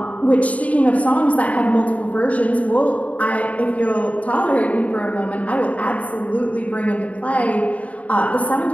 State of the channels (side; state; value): right; late; 0.068 ms